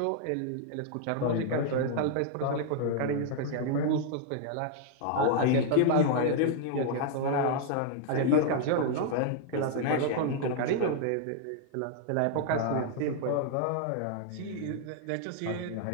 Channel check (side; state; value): both; different; correlation 0.00